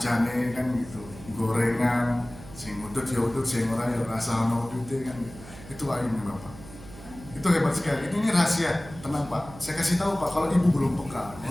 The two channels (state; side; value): noise; right; hum, 17 dB below the sound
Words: kan gitu. Gorengan sing udut ya udut, sing ora ya rasa ono udute kan. Itu ayamnya Bapak. Itu hebat sekali. Ini rahasia. Tenang Pak. Saya kasih tahu Pak kalau Ibu belum peka.